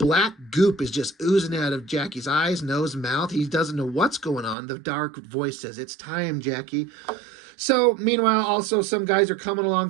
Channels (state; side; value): drops out; left; at 4.5 s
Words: goop is just oozing out of Jackie's eyes, nose, mouth. He doesn't know what's going on. The dark voice says, it's time, Jackie. So, meanwhile, also, some guys are coming